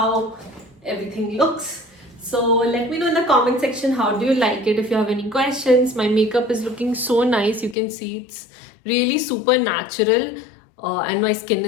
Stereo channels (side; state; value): right; drops out; at 7.8 s